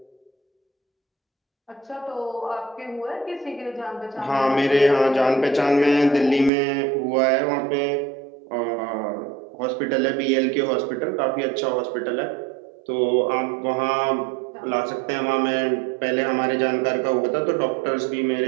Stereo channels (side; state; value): left; drops out; at 6.5 s